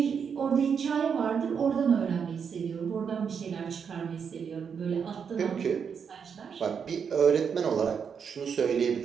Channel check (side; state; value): left; quieter; 6.8 dB